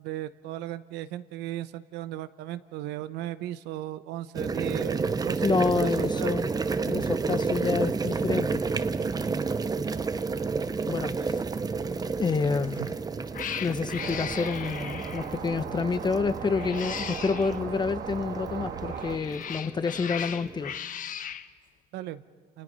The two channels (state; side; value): normal; both; correlation 0.68